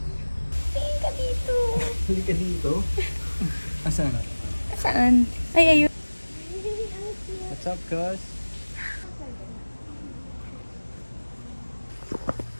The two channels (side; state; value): both; inverted; correlation -1.00